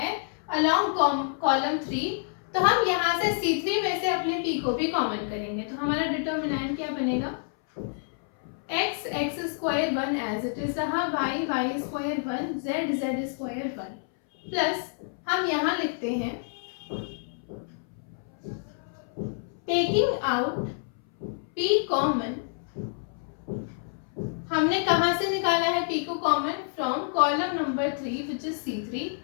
अलोंग कॉलम 3, तो हम यहाँ से C3 में से अपने p को भी कॉमन करेंगे। तो हमारा डिटर्मिनेंट क्या बनेगा, x square 1 as it is रहा, y square 1, z square 1 plus हम यहाँ लिखते हैं टेकिंग आउट p कॉमन, हमने कहाँ से निकाला है p को common, from column number 3 which is C3।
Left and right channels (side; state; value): right; silent; 59 dB below the other